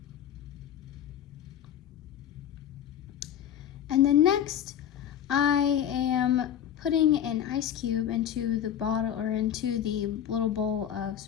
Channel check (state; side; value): quieter; right; 10.1 dB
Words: And then next, I am putting an ice cube into the bottle, or into the little bowl of